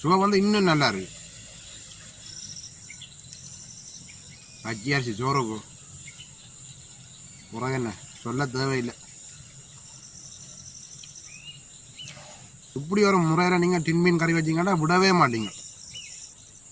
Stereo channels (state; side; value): noise; left; rumble, 29 dB below the sound